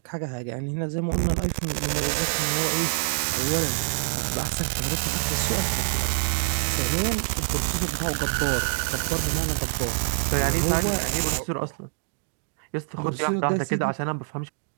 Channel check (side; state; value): left; silent; 61 dB below the other